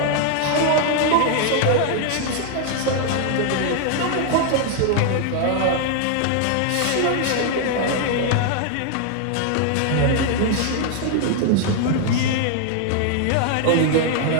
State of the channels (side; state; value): both; different; correlation 0.00